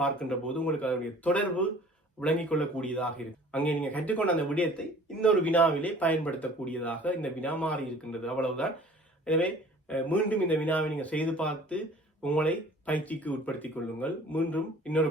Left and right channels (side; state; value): both; normal; correlation 0.49